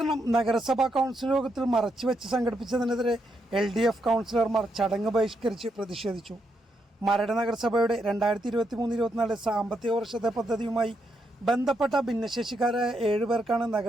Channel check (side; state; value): both; normal; correlation 0.80